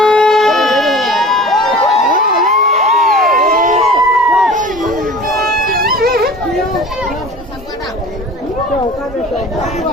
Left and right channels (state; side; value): normal; both; correlation 0.41